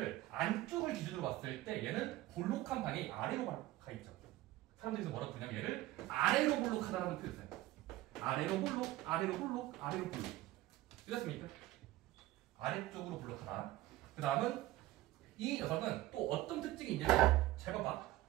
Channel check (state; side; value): quieter; left; 16.5 dB